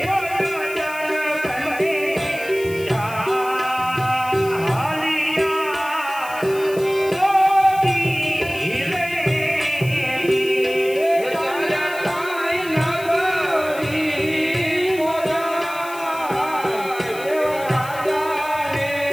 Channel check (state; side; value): noise; left; hiss, 17 dB below the sound